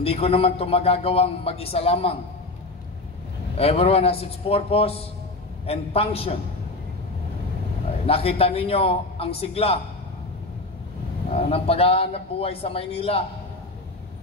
ko naman ito magagawang mag-isa lamang. Everyone has its purpose and function. Nakita ninyo ang sigla ng paghahanap buhay sa Maynila.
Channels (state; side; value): quieter; right; 3.0 dB